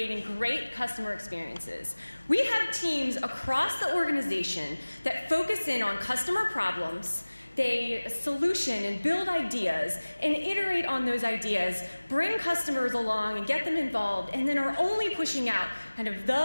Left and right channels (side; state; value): both; inverted; correlation -1.00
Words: great customer experiences. We have teams across the organization that focus in on customer problems. They solution and build ideas and iterate on those ideas, bring customers along and get them involved, and then are only pushing out kind of